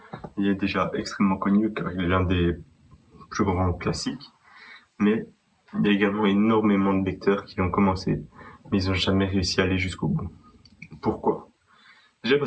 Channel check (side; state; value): both; identical; correlation 1.00